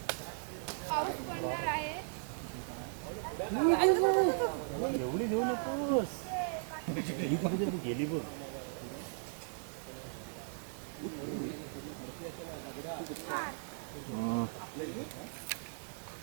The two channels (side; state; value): left; silent; digital silence